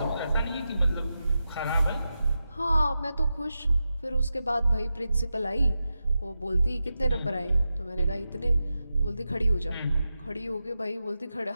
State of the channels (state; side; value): inverted; both; correlation -0.90